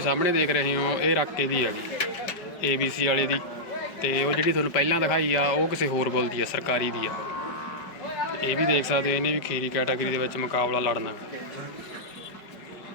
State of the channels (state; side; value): late; right; 5.1 ms